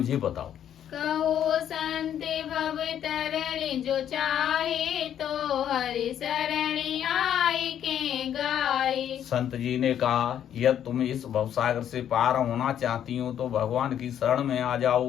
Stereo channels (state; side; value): quieter; right; 9.9 dB